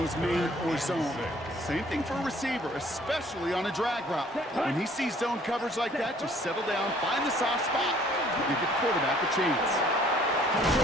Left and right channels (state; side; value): normal; both; correlation 0.58